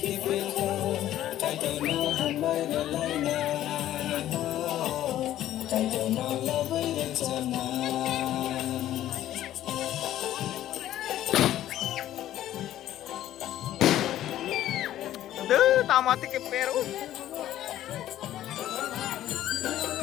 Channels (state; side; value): quieter; right; 12.9 dB